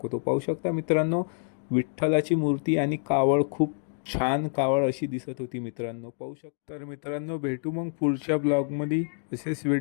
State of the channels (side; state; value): right; silent; digital silence